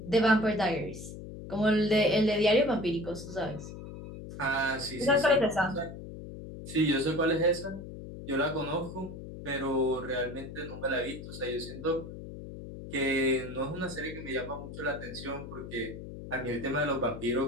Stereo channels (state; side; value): noise; left; hum, 11 dB below the sound